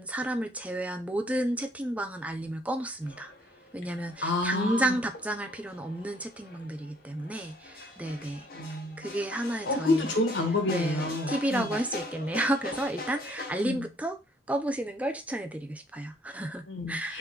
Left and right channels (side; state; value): both; normal; correlation 0.64